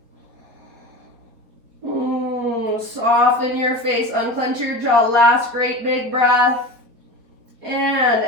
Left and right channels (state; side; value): late; left; 4.4 ms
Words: Soften your face, unclench your jaw. Last great big breath. And